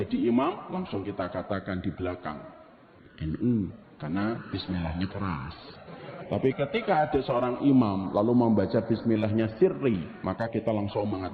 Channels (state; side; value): identical; both; correlation 1.00